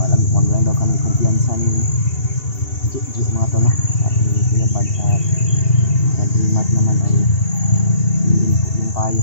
Wag lang daw kami kumpiyansa ni Juju mga tol, no? At ni Kuya Bad sa Dreamart naman ay hindi po yung payo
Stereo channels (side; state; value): right; late; 2.7 ms